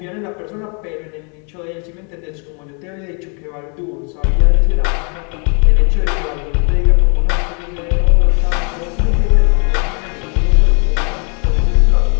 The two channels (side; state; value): right; quieter; 37.3 dB